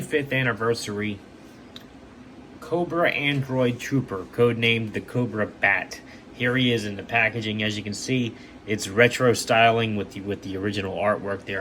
anniversary Cobra Android Trooper, codenamed the Cobra Bat. Here he is in the packaging. As you can see, it's retro styling with the original artwork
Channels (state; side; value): identical; both; correlation 1.00